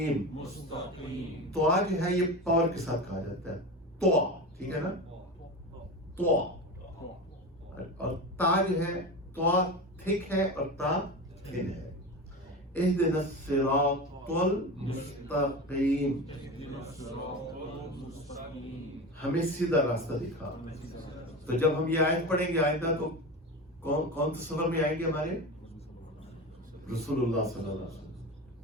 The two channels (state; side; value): normal; both; correlation 0.26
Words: تو جو ہے یہ پاور کے ساتھ کہا جاتا ہے. تو ٹھیک ہے نا، تو. اور تا جو ہے، تو تھک ہے اور تا تھن ہے. اہدنا الصراط المستقیم، ہمیں سیدھا راستہ دکھا. تو جب ہم یہ آیت پڑھیں گے آئندہ تو کون تصور میں آئیں گے؟ ہمارے رسول اللہ صلی اللہ علیہ وسلم.